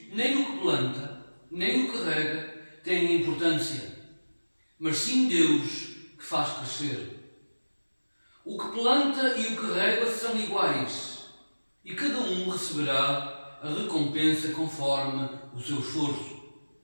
nem o que planta, nem o que rega têm importância, mas sim Deus que faz crescer. O que planta e o que rega são iguais, e cada um receberá a recompensa conforme o seu esforço.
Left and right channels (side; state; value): both; inverted; correlation -1.00